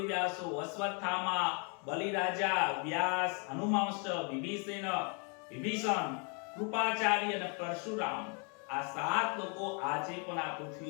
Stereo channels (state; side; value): quieter; right; 36.4 dB